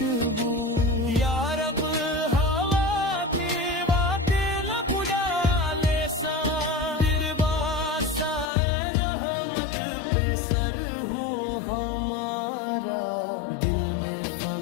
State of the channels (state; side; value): drops out; right; at 8.5 s